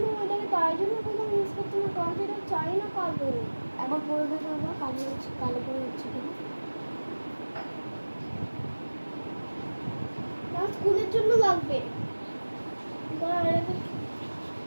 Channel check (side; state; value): both; inverted; correlation -1.00